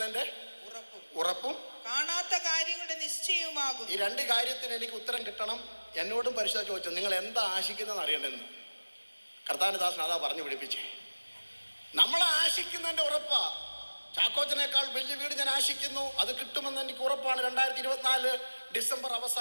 ഉറപ്പും കാണാത്ത കാര്യങ്ങളുടെ നിശ്ചയവുമാകും. ഈ 2 കാര്യത്തിന് എനിക്ക് ഉത്തരം കിട്ടണം. എന്നോടും പരിശോധന ചോദിച്ചു, നിങ്ങൾ എന്താ ആശിക്കുന്നതെന്ന് അറിയണ്ടെന്ന്. കർത്താവിന്റെ ദാസൻ അതാ പറഞ്ഞു പിടിപ്പിച്ചേ. നമ്മൾ ആശിക്കുന്നതിന്റെ ഉറപ്പാ. ചാക്കോച്ചനേക്കാൾ വലിയ വീട് ഞാൻ ആശിക്കുന്നു, അത് കിട്ടുമെന്ന് എനിക്ക് ഉറപ്പാണ് 2024 ഡിസംബർ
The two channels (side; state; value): both; inverted; correlation -1.00